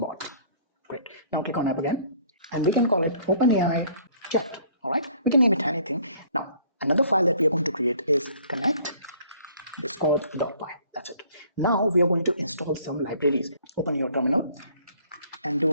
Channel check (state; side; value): inverted; both; correlation -0.57